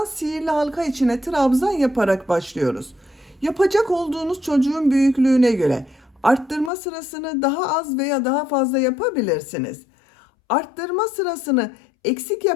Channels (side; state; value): right; drops out; at 6.7 s